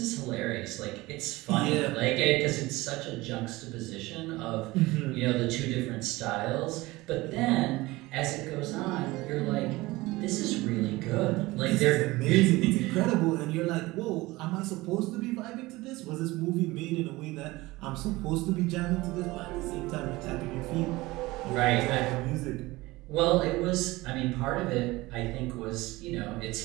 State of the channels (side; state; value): left; quieter; 20.3 dB